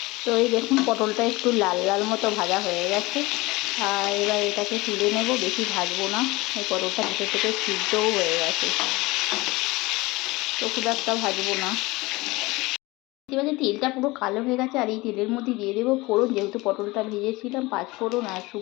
তো এই দেখুন পটলটা একটু লাল লাল মতো ভাজা হয়ে গেছে, আর এবার এটাকে তুলে নেব। বেশি ভাজবো না, এই পটলটা ভিতর থেকে সিদ্ধও হয়ে গেছে, তো খুব একটা ভাজবো না। এবারে তেলটা পুরো কালো হয়ে গেছে, আর এই তেলের মধ্যে দিয়ে দেবো ফোড়ন। যেহেতু পটলটা ভেজেছিলাম, 5 ফোড়ন আর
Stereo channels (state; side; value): quieter; right; 22.0 dB